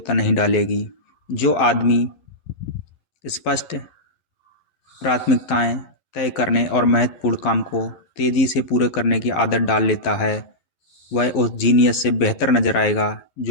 नहीं डालेगी। जो आदमी स्पष्ट प्राथमिकताएं तय करने और महत्वपूर्ण काम को तेज़ी से पूरे करने की आदत डाल लेता है, वह उस जीनियस से बेहतर नजर आएगा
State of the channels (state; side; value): late; right; 11 ms